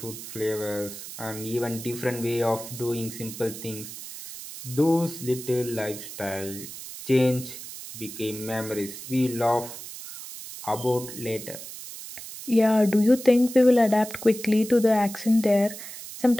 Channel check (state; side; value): noise; right; hiss, 12 dB below the sound